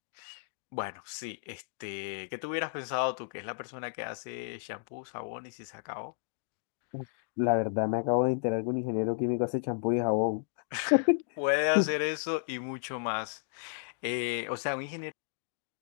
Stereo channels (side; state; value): right; silent; digital silence